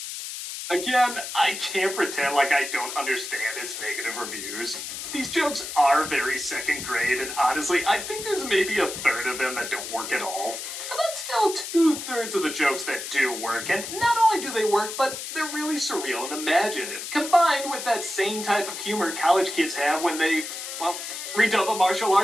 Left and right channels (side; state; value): left; noise; hiss, 7 dB below the sound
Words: Again, I can't pretend like I don't understand its negative reviews. These jokes are very second grade, and honestly, I think there's maybe a third of them that don't work at all. But that's still 2/3 of the jokes that do work, and not only do they work, but they're really surreal and imaginative, combined with that same type of humor college kids have when they, well, redub a martial